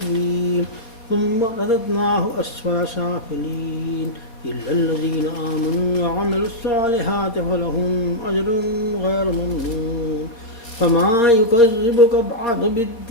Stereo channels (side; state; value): right; late; 4.3 ms